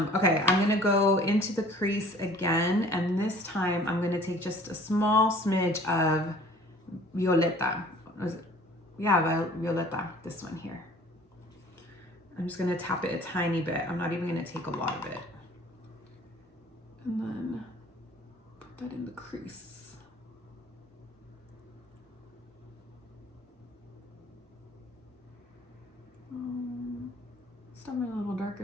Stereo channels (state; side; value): normal; both; correlation 0.51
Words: I'm gonna go into the crease again, and this time I'm gonna take just a small smidge of Violeta. Yeah, Violeta, this one here. I'm just gonna tap it a tiny bit. I'm not even gonna take a lot of it. And then put that in the crease. It's definitely a little